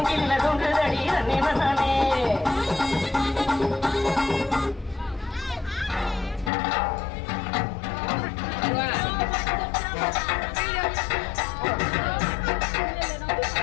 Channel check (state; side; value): drops out; right; at 6.5 s